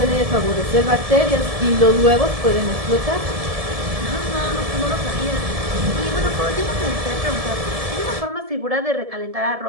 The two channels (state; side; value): late; left; 1.7 ms